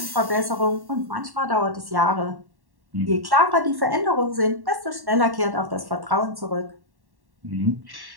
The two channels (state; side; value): late; left; 1.1 ms